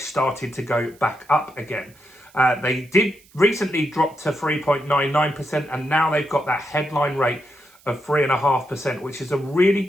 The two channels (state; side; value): noise; right; hiss, 28 dB below the sound